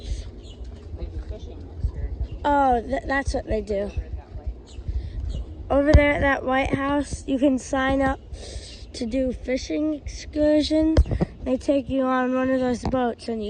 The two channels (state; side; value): identical; both; correlation 1.00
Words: Oh, that's what they do. Over there at that White House, you can sign up to do fishing excursions. They take you on one of those boats and